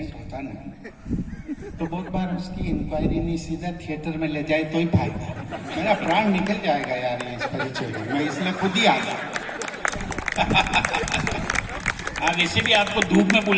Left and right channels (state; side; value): identical; both; correlation 1.00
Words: होता ना, तो बहुत बार उसकी इंक्वायरी नहीं सीधा थिएटर में ले जाए तो ही फायदा। मेरा प्राण निकल जाएगा यार ये इस परिचय में, मैं इसलिए खुद ही आ गया। हाँ, वैसे भी आपको धूप में